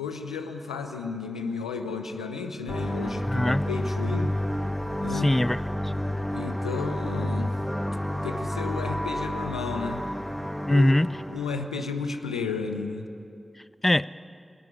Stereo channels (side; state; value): both; normal; correlation 0.90